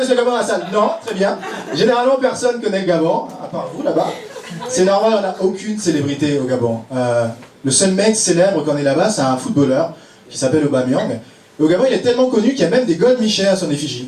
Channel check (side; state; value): both; identical; correlation 1.00